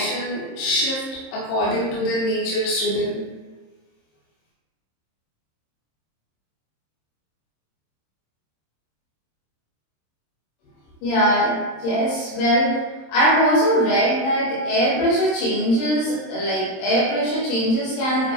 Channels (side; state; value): right; late; 26 ms